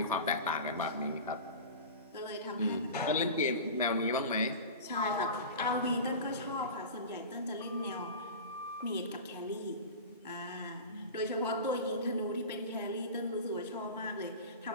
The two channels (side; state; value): both; inverted; correlation -0.31